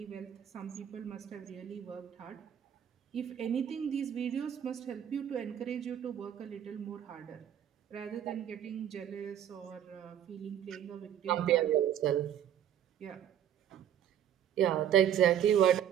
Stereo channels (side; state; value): left; quieter; 10.1 dB